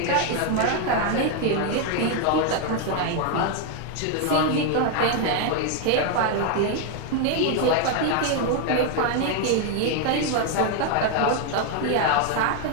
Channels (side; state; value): both; different; correlation 0.01